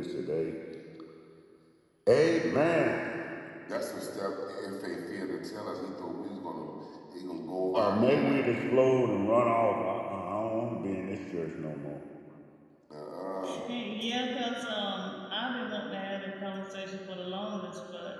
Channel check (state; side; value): identical; both; correlation 1.00